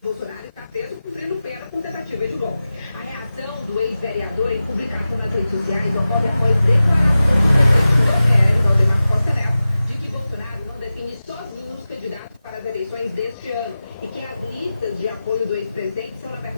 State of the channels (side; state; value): both; inverted; correlation -0.95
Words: Bolsonaro está preso cumprindo pena por tentativa de golpe. A reação do ex-vereador em publicação nas redes sociais ocorre após declarações do presidente do PL, Valdemar Costa Neto, de que Bolsonaro não define sozinho os candidatos para as eleições deste ano e que as listas de apoio do ex-presidente são, na